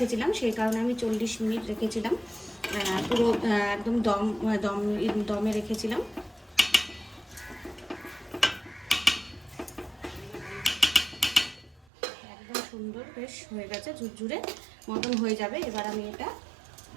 সেই কারণে আমি 40 মিনিট রেখেছিলাম। পুরো একদম দমে রেখেছিলাম। একদম সুন্দর বেশ হয়ে গেছে, ঝুরঝুরে মতন হয়ে যাবে। এবার আমি এটা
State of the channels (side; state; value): left; drops out; at 11.9 s